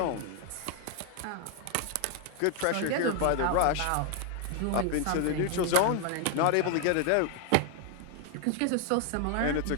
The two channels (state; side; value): different; both; correlation 0.00